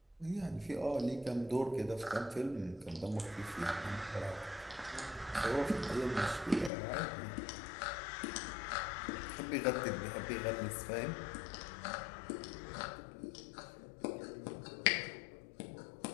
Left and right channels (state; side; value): drops out; right; at 6.7 s